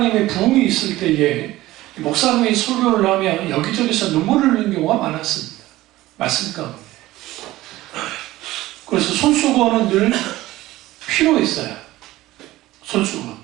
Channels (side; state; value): left; quieter; 16.9 dB